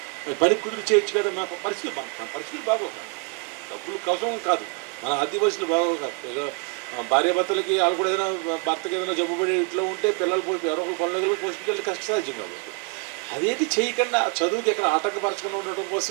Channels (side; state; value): left; quieter; 34.9 dB